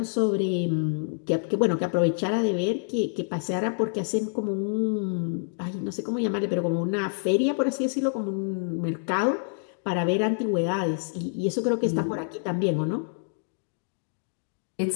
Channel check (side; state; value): right; silent; digital silence